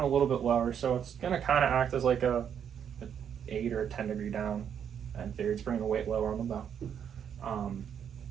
little bit lower, so it's going to kind of act as like a 8 or a 10 degree down. And theory, it's bringing the weight lower on the bow.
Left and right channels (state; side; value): quieter; left; 8.4 dB